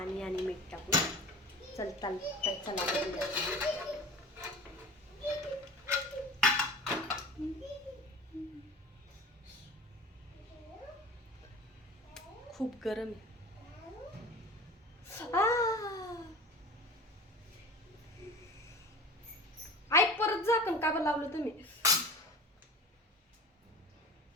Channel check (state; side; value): normal; both; correlation 0.37